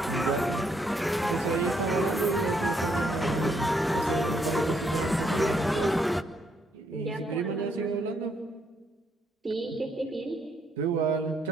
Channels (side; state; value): both; normal; correlation 0.73